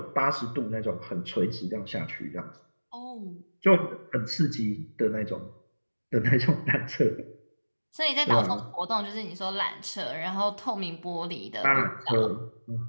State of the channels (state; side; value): inverted; both; correlation -1.00